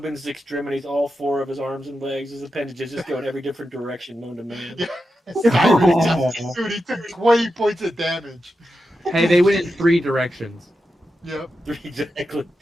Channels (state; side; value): normal; both; correlation 0.89